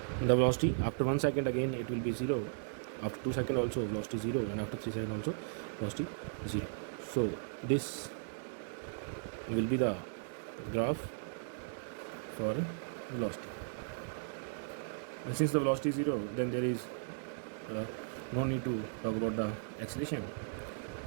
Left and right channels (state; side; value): silent; left; digital silence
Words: the velocity after 1 second again it will be 0, after 2 seconds also velocity 0, and after 3 seconds also velocity 0. So this will be the graph for velocity. And since the velocity is 0, then there is no need to talk about the acceleration.